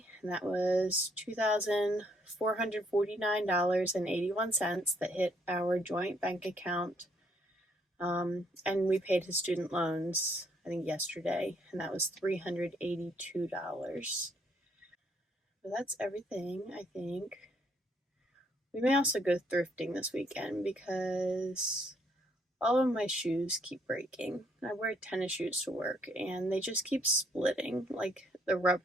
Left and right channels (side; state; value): both; normal; correlation 0.69